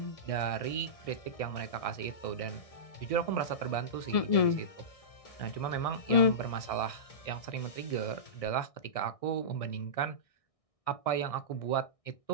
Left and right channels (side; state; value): right; late; 1.6 ms